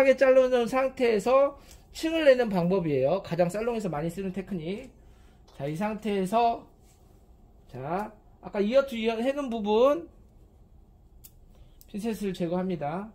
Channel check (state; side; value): identical; both; correlation 1.00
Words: 자르는 상태에서 층을 내는 방법이에요. 가장 살롱에서 많이 쓰는 테크닉. 자, 이 상태에서 자, 아까 이어 투 이어 해놓은 부분 핀셋을 제거합니다.